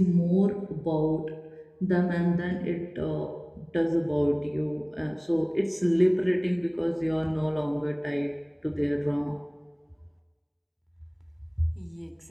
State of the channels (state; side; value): identical; both; correlation 1.00